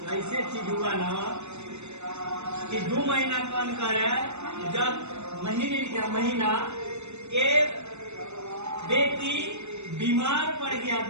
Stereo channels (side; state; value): left; late; 0.82 ms